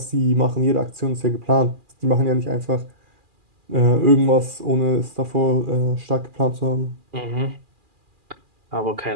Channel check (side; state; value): left; late; 2.4 ms